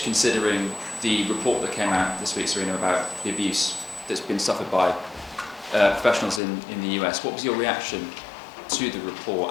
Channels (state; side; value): drops out; right; at 6.4 s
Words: considering the report that came out this week, Sarina, about the abuse that's been suffered by professionals in the US. What was your reaction to the